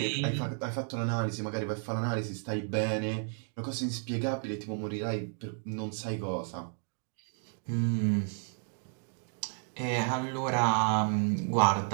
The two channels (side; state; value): left; silent; 56 dB below the other